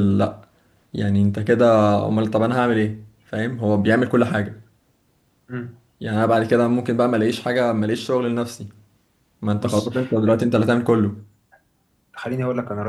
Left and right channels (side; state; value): both; identical; correlation 1.00